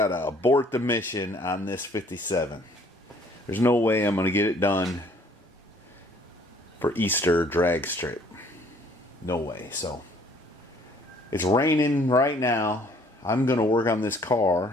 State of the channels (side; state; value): both; normal; correlation 0.59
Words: abort the mission on this 57. There's no way I'm gonna get it done for Easter drag strip. No way. So it's raining right now. I'm gonna work on this